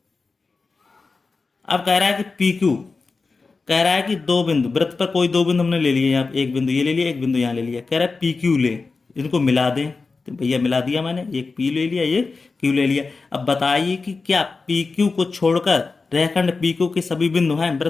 अब कह रहा है कि पी क्यू कह रहा है कि दो बिंदु, वृत्त पर कोई दो बिंदु हमने ले लिए, यहाँ एक बिंदु ये ले लिया, एक बिंदु यहाँ ले लिया, कह रहा है पी क्यू ले, इनको मिला दें। तो भैया मिला दिया मैंने, एक पी ले लिया, ये क्यू ले लिया। अब बताइए कि क्या पी क्यू को छोड़कर रेखाखंड पी क्यू के सभी बिंदु हैं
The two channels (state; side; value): quieter; right; 4.2 dB